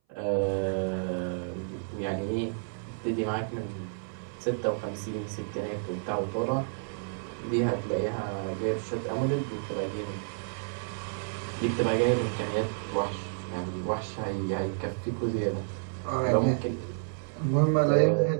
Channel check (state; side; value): silent; left; 58 dB below the other